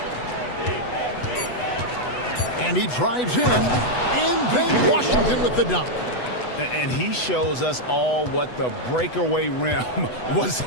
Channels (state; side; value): late; right; 8.1 ms